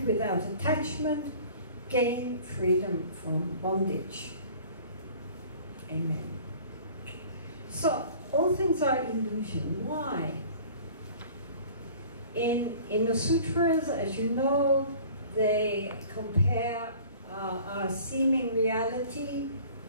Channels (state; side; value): inverted; both; correlation -0.47